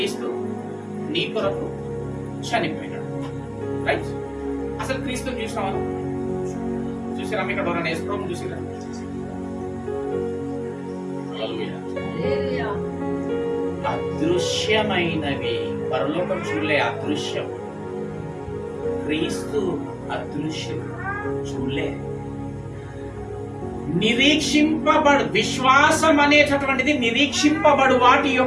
నీ కొరకు చనిపోయినాడు. రైట్? అసలు క్రీస్తుని చూసినావా? చూసిరా? ఇక్కడ ఎవరైనా యేసుప్రభుని చూసిరా? అదృశ్యమైనవి పరలోకం చూడలే, అదృశ్యం. క్రీస్తు అదృశ్యం చూడలే. విశ్వాసం అనేటటువంటిది నిరీక్షింపబడు వాటి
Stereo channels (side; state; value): both; identical; correlation 1.00